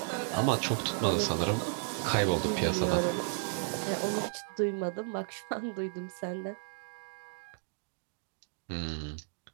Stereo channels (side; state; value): left; silent; 55 dB below the other